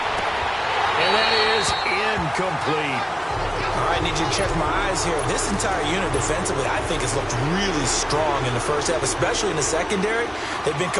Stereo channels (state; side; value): identical; both; correlation 1.00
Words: And that is incomplete. All right, I need you to check my eyes here. This entire unit defensively, I think, has looked really strong in the first half, especially in the secondary. They've been